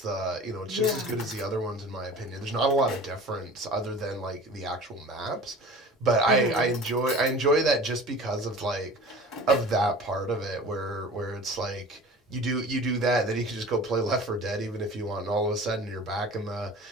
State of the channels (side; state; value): both; normal; correlation 0.40